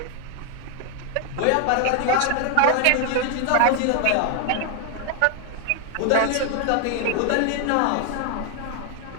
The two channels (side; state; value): both; different; correlation 0.00